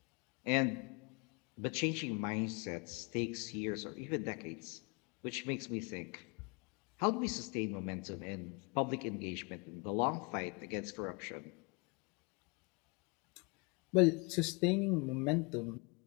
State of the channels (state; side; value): quieter; right; 31.3 dB